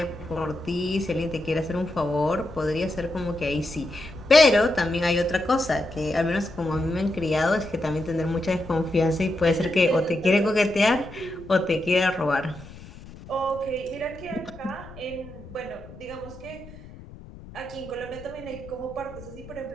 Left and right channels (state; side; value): noise; left; rumble, 17 dB below the sound